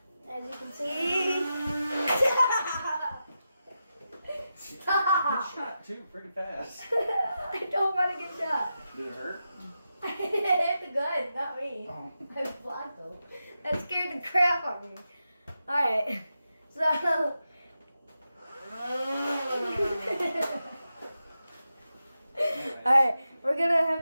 As you can see. Stop! Shot too pretty fast. I don't want to get shot. Did it hurt? I hit the gun, not me. Oh. I blocked him. That scared the crap out of me. Alright. So alright, we're gonna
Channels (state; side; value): inverted; both; correlation -0.89